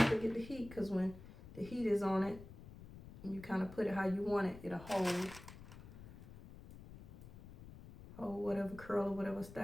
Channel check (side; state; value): left; noise; rumble, 16 dB below the sound